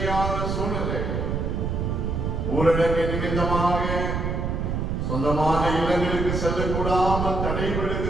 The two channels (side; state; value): right; noise; rumble, 1 dB below the sound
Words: சூழ்நிலை, ஊரடங்கு நிமித்தமாக சொந்தமான இல்லங்களுக்கு செல்லக்கூடாமல்